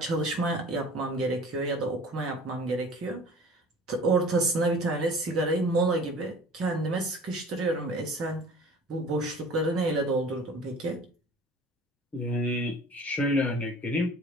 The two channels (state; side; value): normal; both; correlation 0.45